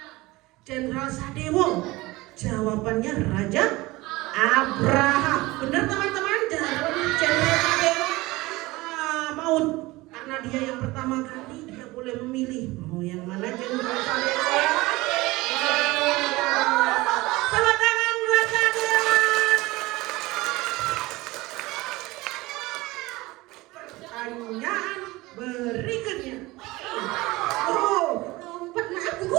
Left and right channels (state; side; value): quieter; left; 20.6 dB